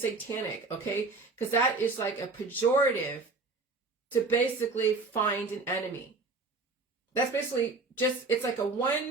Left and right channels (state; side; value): quieter; left; 3.7 dB